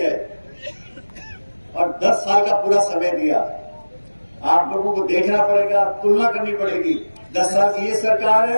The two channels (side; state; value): both; inverted; correlation -1.00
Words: और 10 साल का पूरा समय दिया। आप लोगों को देखना पड़ेगा, तुलना करनी पड़ेगी। 10 साल की ये सरकार